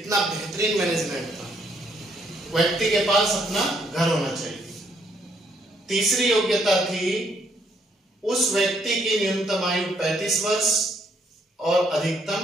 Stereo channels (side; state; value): both; normal; correlation 0.70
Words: बेहतरीन मैनेजमेंट था। व्यक्ति के पास अपना घर होना चाहिए। तीसरी योग्यता थी, उस व्यक्ति की न्यूनतम आयु 35 वर्ष और अधिकतम